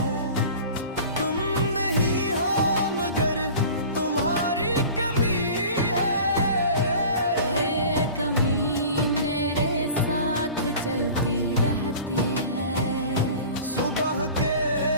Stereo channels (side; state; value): both; inverted; correlation -0.40